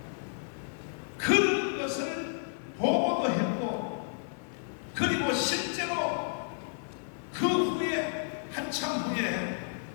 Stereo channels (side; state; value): right; silent; 57 dB below the other